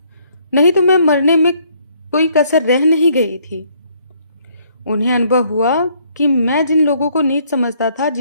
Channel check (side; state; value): both; inverted; correlation -0.66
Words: नहीं तो मैं मरने में कोई कसर रह नहीं गई थी। उन्हें अनुभव हुआ कि मैं जिन लोगों को नीच समझता था